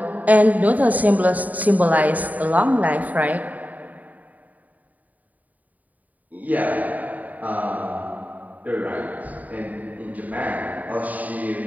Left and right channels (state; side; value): late; left; 0.076 ms